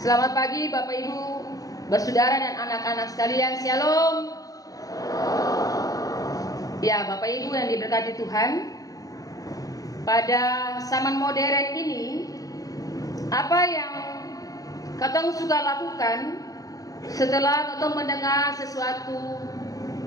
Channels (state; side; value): late; right; 0.17 ms